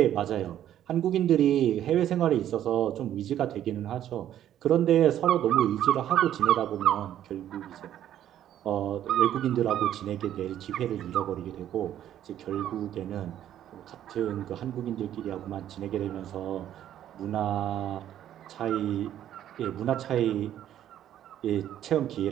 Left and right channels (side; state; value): left; quieter; 11.3 dB